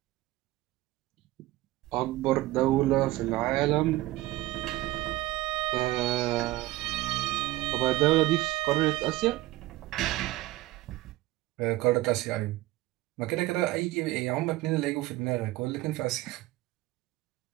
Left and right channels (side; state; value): left; quieter; 17.7 dB